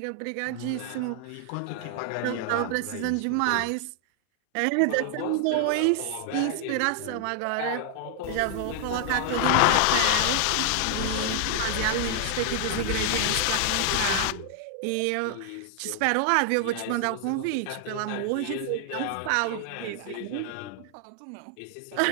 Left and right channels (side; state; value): both; different; correlation 0.00